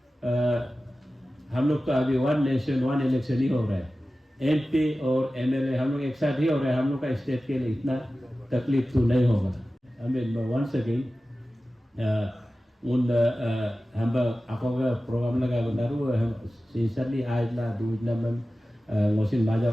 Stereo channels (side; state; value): both; normal; correlation 0.95